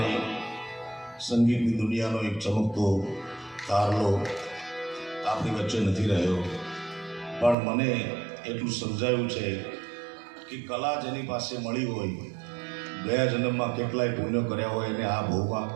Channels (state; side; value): drops out; left; at 7.6 s